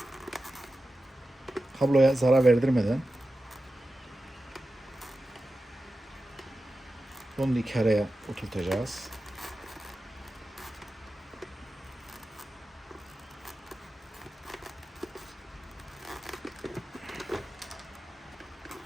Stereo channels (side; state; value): both; normal; correlation 0.93